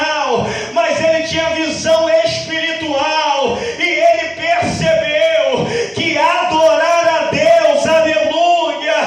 mas ele tinha visão espiritual, e ele percebeu que adorar a Deus, aleluia,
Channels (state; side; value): identical; both; correlation 1.00